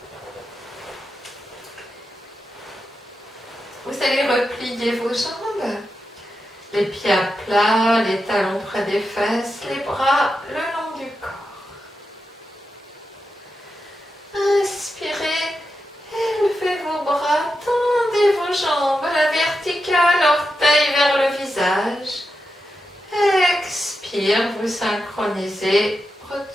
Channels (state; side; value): normal; both; correlation 0.88